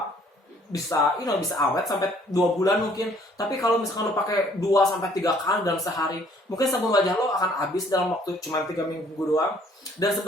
bisa awet sampai 2 bulan mungkin. Tapi kalau misalkan lo pakai 2 sampai 3 kali dalam sehari, mungkin sabun wajah lo akan habis dalam waktu cuma 3 minggu doang. Dan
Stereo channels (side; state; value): both; normal; correlation 0.61